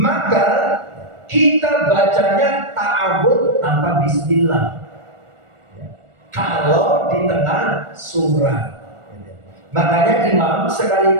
kita bacanya ta'awud tanpa bismillah. Kalau di tengah surah. Makanya imam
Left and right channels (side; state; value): left; late; 1.4 ms